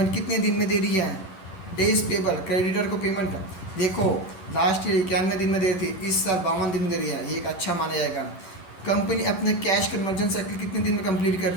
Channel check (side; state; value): right; late; 11 ms